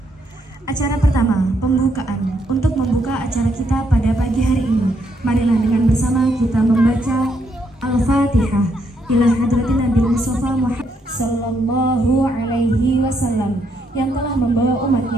Acara pertama, pembukaan. Untuk membuka acara kita pada pagi hari ini, marilah dengan bersama kita membaca Al-Fatihah ila hadratin Nabi Mustafa Muhammad sallallahu alaihi wasallam yang telah membawa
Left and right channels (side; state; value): both; normal; correlation 0.75